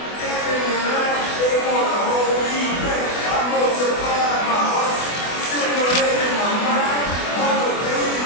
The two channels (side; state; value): right; late; 24 ms